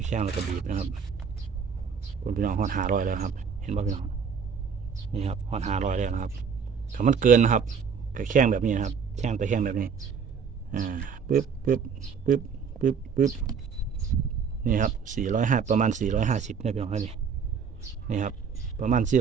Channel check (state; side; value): quieter; left; 6.3 dB